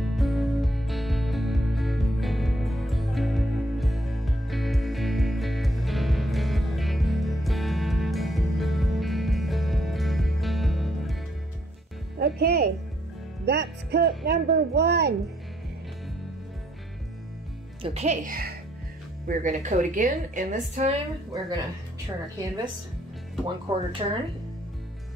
Okay, that's coat number 1. Okay, we're going to coat again, and this time we're going to turn our canvas 1/4 turn.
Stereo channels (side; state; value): both; normal; correlation 0.70